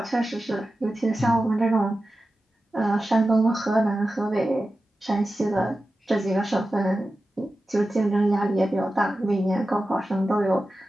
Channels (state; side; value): normal; both; correlation 0.93